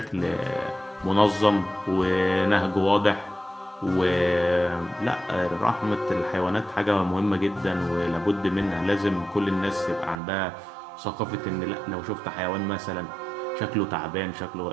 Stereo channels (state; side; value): drops out; left; at 10.2 s